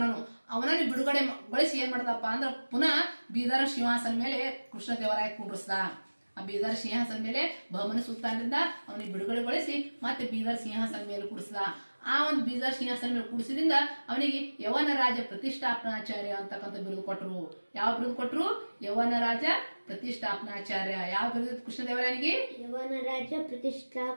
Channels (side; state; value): both; inverted; correlation -1.00